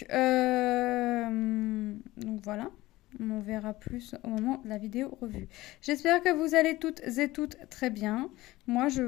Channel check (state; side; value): quieter; right; 18.1 dB